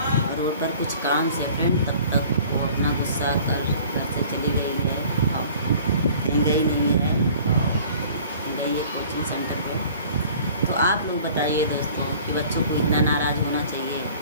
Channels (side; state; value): both; inverted; correlation -0.49